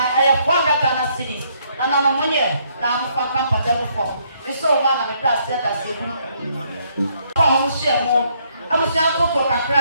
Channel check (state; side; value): inverted; both; correlation -0.70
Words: have 4 Ghana cities. And on a money, now I'm for comfortable form. It's so long and it does set us a I was young for